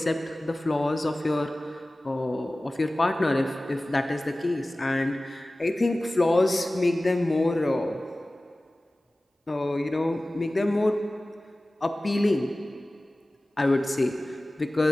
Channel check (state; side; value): normal; both; correlation 0.97